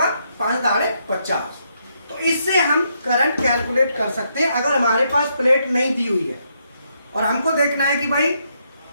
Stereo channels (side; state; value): both; inverted; correlation -0.77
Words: 5 दाड़े 50। तो इससे हम करंट कैलकुलेट कर सकते हैं अगर हमारे पास प्लेट नहीं दी हुई है और हमको देखना है कि भाई